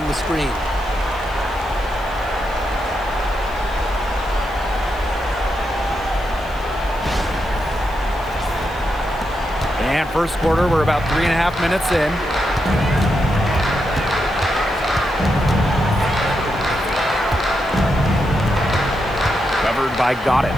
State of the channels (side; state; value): left; noise; hiss, 25 dB below the sound